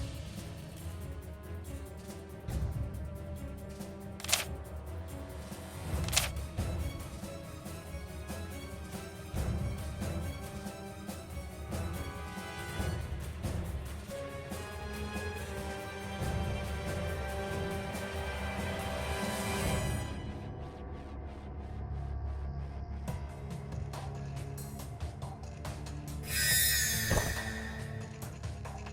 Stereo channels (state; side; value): identical; both; correlation 1.00